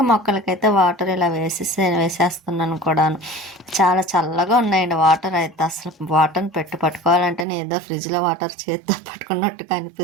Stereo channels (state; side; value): drops out; left; at 7.5 s